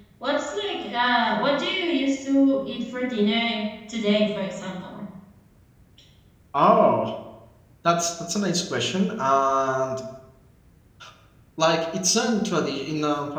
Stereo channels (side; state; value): both; identical; correlation 1.00